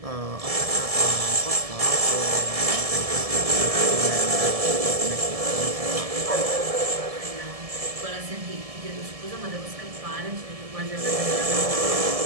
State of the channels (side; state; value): left; late; 1.7 ms